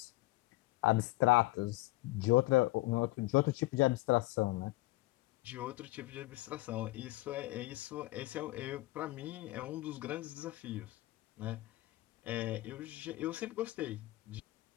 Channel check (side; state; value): right; quieter; 19.6 dB